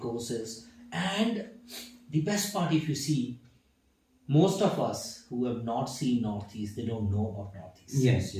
And the best part, if you see, most of us who have not seen Northeast, they don't know about Northeast. Yes,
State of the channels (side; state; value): both; identical; correlation 1.00